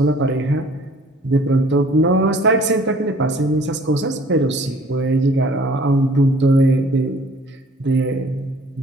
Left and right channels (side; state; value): both; normal; correlation 0.53